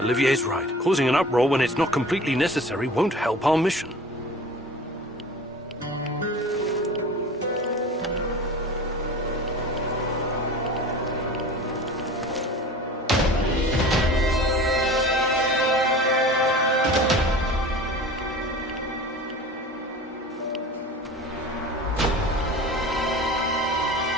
right. Causing an uproar when it's not completely necessary won't help our mission.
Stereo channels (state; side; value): normal; both; correlation 0.39